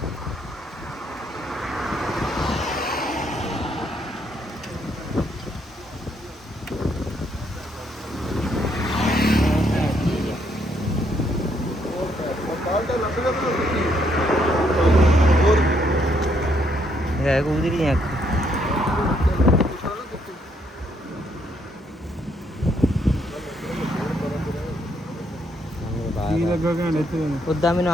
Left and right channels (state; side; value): normal; both; correlation 0.72